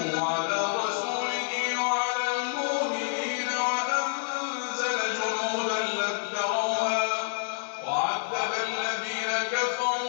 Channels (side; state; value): right; silent; 59 dB below the other